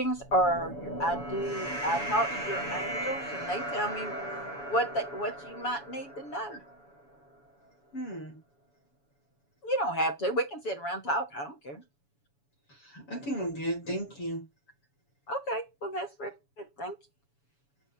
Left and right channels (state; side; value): late; right; 7.1 ms